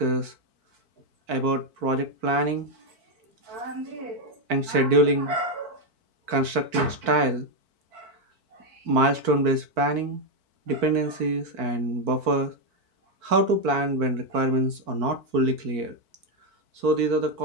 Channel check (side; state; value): left; late; 4.5 ms